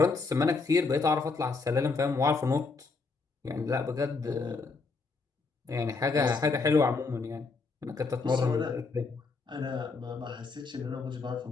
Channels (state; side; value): quieter; right; 4.2 dB